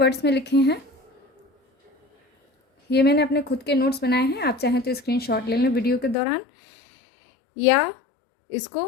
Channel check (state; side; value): drops out; right; at 6.2 s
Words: में लिखे हैं। ये मैंने अपने खुद के नोट्स बनाए हैं। आप चाहें तो स्क्रीनशॉट ले लें वीडियो के दौरान, या इसको